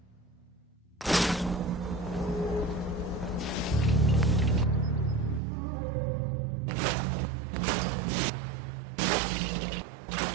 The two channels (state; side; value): drops out; left; at 5.4 s